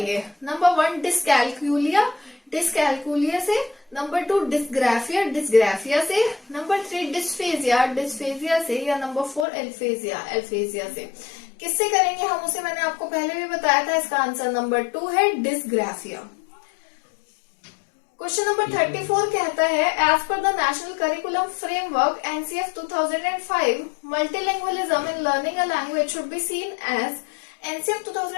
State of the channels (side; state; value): right; drops out; at 9.5 s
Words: नंबर 1 डिस्कैल्कुलिया, डिस्कैल्कुलिया से। नंबर 2 डिस्ग्राफिया, डिस्ग्राफिया से। नंबर 3 डिस्फेजिया, डिस्फेजिया से। या नंबर 4 एल्फेजिया, एल्फेजिया से। किससे करेंगे हम उसे मैंने आपको पहले भी बताया था। इसका आंसर नंबर 2 है डिस्ग्राफिया। क्वेश्चन नंबर 34 कहता है as per the national curriculum framework NCF 2005 multilingualism in learning a language should be seen as. NCF